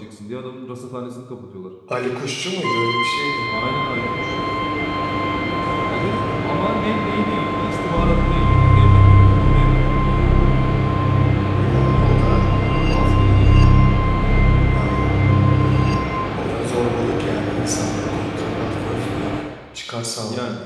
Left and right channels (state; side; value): identical; both; correlation 1.00